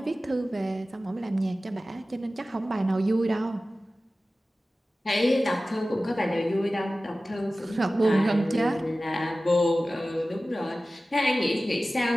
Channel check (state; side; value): normal; both; correlation 0.96